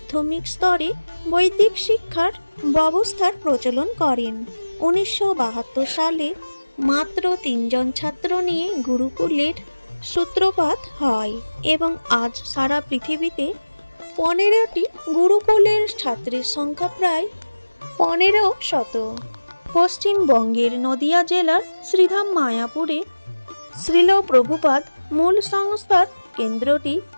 স্তরে বৈদিক শিক্ষার ব্যবস্থার প্রচলন করেন। 1972 সালে মাত্র 3 জন ছাত্র নিয়ে গুরুকুলের সূত্রপাত হয় এবং আজ সারা পৃথিবীতে 15টি গুরুকুলের ছাত্রের সংখ্যা প্রায় 1500। পশ্চিমবঙ্গের নদিয়া জেলার শ্রীধাম মায়াপুরে শ্রীল প্রভুপাদ মূল সংস্থার কেন্দ্রটি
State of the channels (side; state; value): both; inverted; correlation -1.00